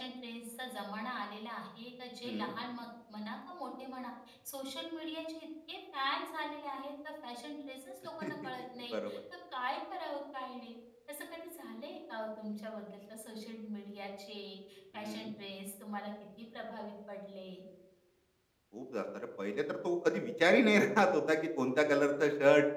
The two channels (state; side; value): identical; both; correlation 1.00